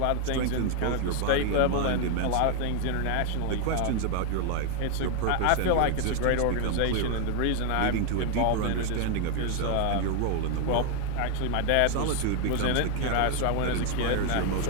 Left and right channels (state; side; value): different; both; correlation 0.01